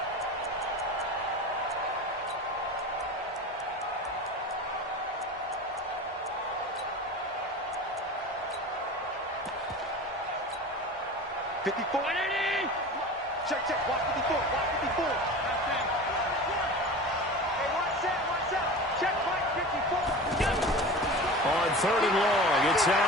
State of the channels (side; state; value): both; normal; correlation 0.33